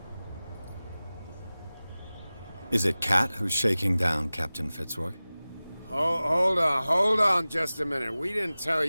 Is it Cat who's shaking down Captain Fitzroy? Hold on just a minute. We didn't tell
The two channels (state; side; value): inverted; both; correlation -0.98